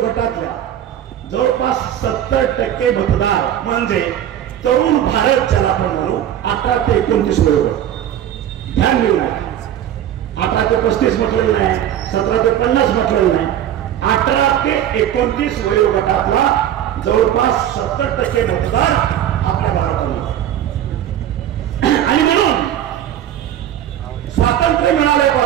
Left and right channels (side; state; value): left; quieter; 10.9 dB